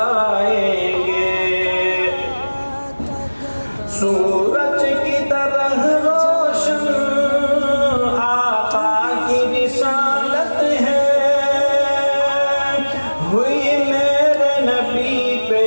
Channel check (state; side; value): inverted; both; correlation -1.00